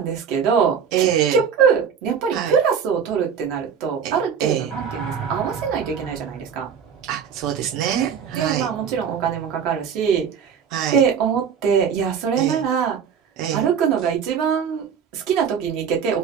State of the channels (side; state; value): left; quieter; 7.2 dB